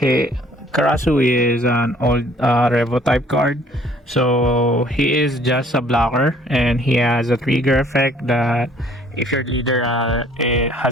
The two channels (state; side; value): normal; both; correlation 0.58